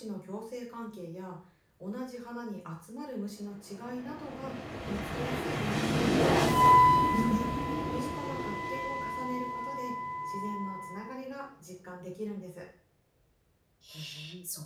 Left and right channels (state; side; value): identical; both; correlation 1.00